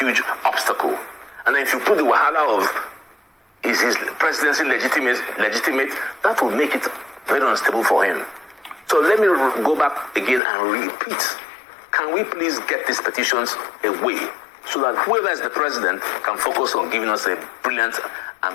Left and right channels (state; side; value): drops out; right; at 10.4 s